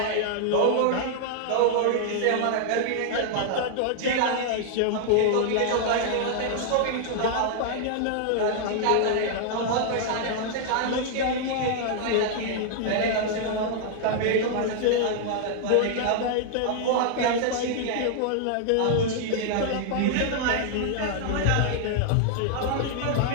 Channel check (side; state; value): both; different; correlation -0.01